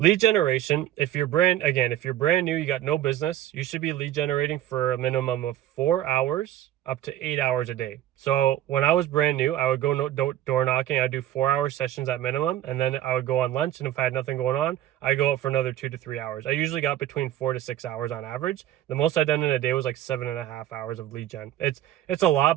generation, if you're brand new, you got no business, you should be lead generating for a minimum of 4 hours up to 8 hours a day. So when I was brand new, I would go door knocking. I'd do 4-hour sessions at minimum, and then I would go on lunch. And if I had nothing going on, I'd go out for another 2 to 3 hours. I usually got between 4 to 6 hours on average. The most I've done in a day was like 7.5 hours of lead gen. It's a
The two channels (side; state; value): left; quieter; 12.7 dB